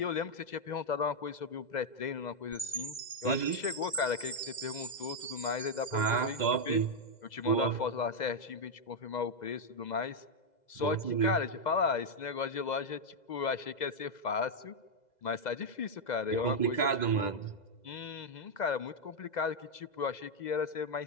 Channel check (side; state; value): right; late; 2.0 ms